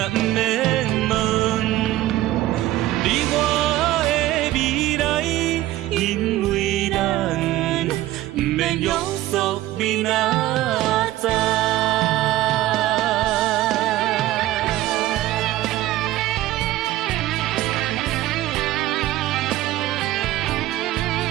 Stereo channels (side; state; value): left; quieter; 15.6 dB